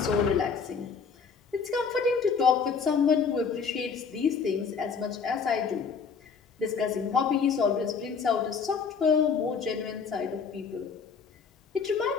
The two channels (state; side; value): quieter; right; 5.7 dB